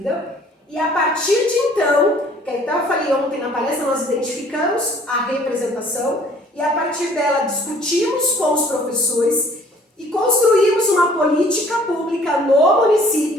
e a partir de então, que então eu falei ontem na palestra, nós identificamos a representação, e a partir dela discutimos com os professores e construímos uma política pública no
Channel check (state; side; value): normal; both; correlation 0.56